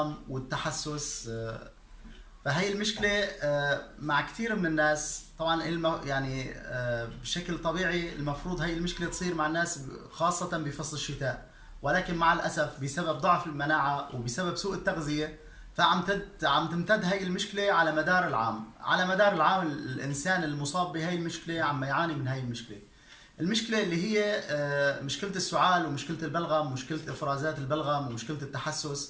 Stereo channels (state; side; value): identical; both; correlation 1.00